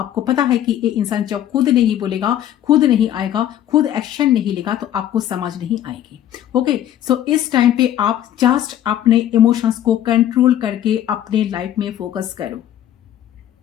पता है कि ये इंसान जब खुद नहीं बोलेगा, खुद नहीं आएगा, खुद एक्शन नहीं लेगा, तो आपको समझ नहीं आएगी। ओके, सो इस टाइम पे आप जस्ट अपने इमोशंस को कंट्रोल करके अपने लाइफ में फोकस करो।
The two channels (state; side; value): quieter; right; 11.5 dB